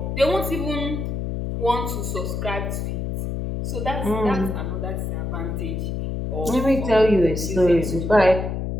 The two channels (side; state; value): left; noise; hum, 3 dB below the sound